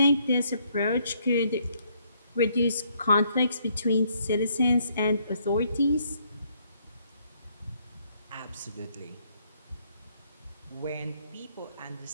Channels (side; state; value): both; inverted; correlation -0.69